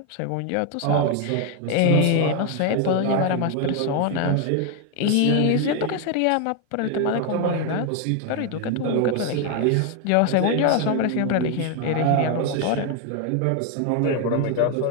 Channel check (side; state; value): both; different; correlation 0.01